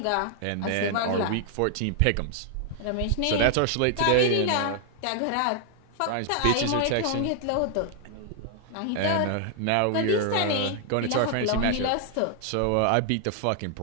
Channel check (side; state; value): both; different; correlation 0.00